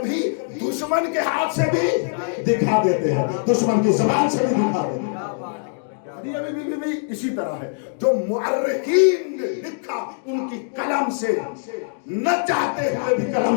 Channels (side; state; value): right; silent; digital silence